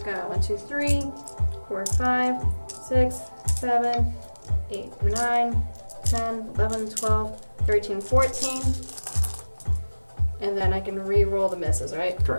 got 1, 2, 3, 4, 5, 6, 7, 8, 9, 10, 11, 12, 13, 14. And then I can re-roll the misses, right?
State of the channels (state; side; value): inverted; both; correlation -1.00